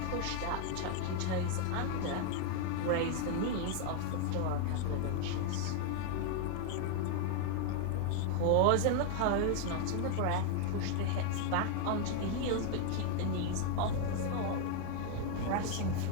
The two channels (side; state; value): both; different; correlation 0.00